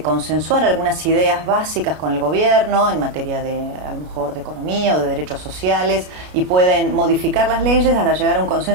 consensuar algunas ideas básicas con el gobierno en materia de, a lo mejor, de economía o de derechos sociales, y pueden modificar las leyes hasta llegar a un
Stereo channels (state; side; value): late; left; 33 ms